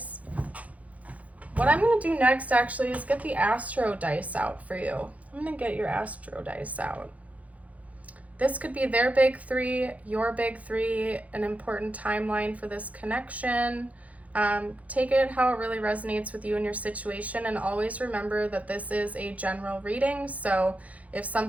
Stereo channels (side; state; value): left; late; 0.069 ms